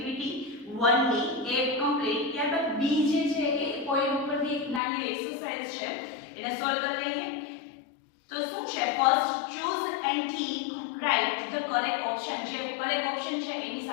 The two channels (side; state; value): right; drops out; at 4.8 s